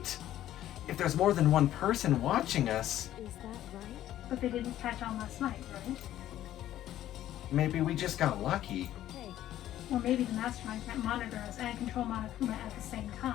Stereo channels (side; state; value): right; quieter; 12.8 dB